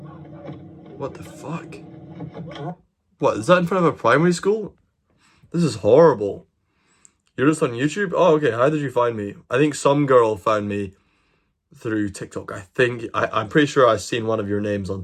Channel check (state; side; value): identical; both; correlation 1.00